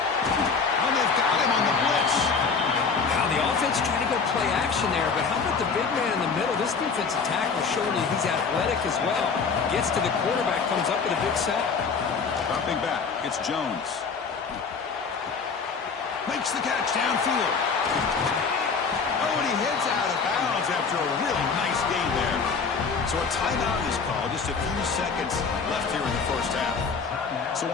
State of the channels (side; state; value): right; quieter; 5.3 dB